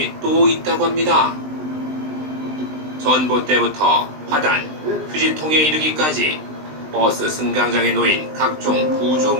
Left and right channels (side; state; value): left; late; 20 ms